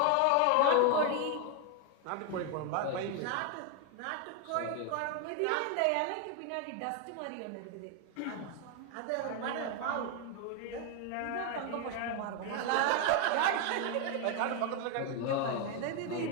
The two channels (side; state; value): both; different; correlation 0.01